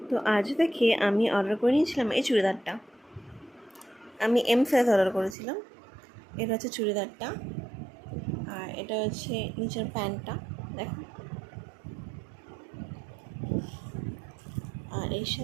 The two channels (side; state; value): left; drops out; at 5.4 s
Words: তো আজ থেকে আমি অর্ডার করে নিয়েছিলাম এই চুড়িদারটা। আমি এম সাইজ অর্ডার করেছিলাম। এটা হচ্ছে চুড়িদারটা, আর এটা হচ্ছে নিচের প্যান্টটা, দেখো। আর এর